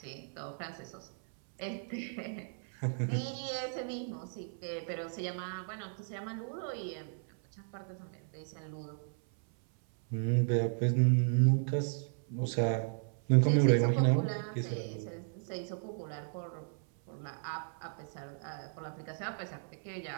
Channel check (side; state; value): left; silent; 54 dB below the other